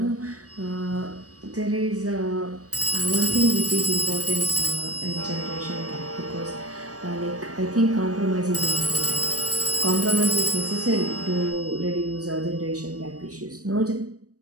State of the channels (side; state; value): left; late; 0.66 ms